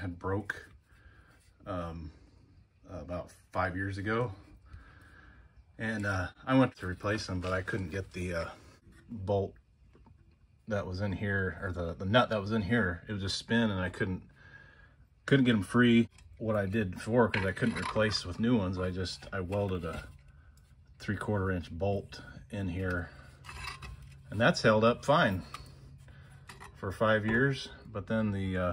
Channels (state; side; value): identical; both; correlation 1.00